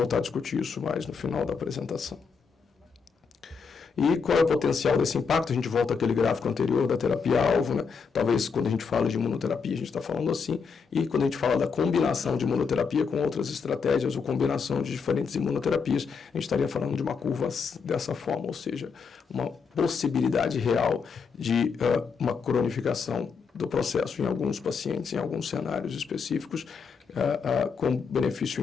a discutir isso mais no final da apresentação. E qual é o potencial desse impacto? A gente volta àquele gráfico anterior da terapia-alvo, né? Talvez quando a gente fala de imunoterapia, a gente está falando assim, e quando a gente fala da combinação de imunoterapia com outras estratégias ou combinação de diferentes imunoterapias, a gente estaria falando de uma curva dessa forma, ou seja, uma possibilidade real de uma cronificação do processo em alguns pacientes, em alguns cenários específicos, com benefício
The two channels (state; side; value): quieter; right; 5.6 dB